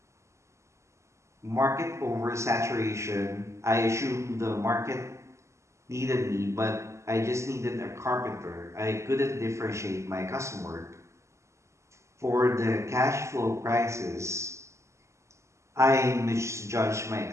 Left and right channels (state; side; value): late; left; 0.14 ms